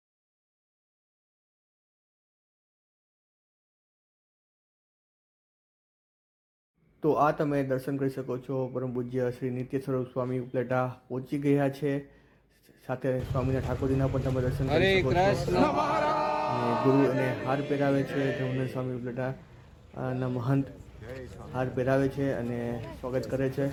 તો આ તમે દર્શન કરી શકો છો પરમ પૂજ્ય શ્રી નિત્ય સ્વરૂપ સ્વામી ઉપલેટા પહોંચી ગયા છે। સાથે સ્વામીના ઠાકોરજીના પણ તમે દર્શન કરી શકો છો। અને ગુરુ એને હાર પહેરાવે છે। ધર્મનંદ સ્વામી ઉપલેટા ના મહંત હાર પહેરાવે છે અને સ્વાગત કરે છે।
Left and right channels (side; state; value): both; identical; correlation 1.00